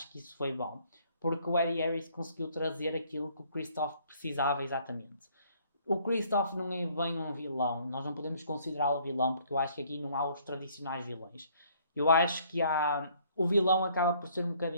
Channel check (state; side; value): inverted; both; correlation -0.61